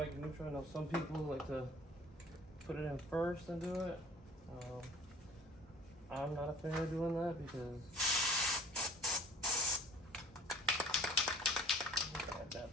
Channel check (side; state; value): both; normal; correlation 0.49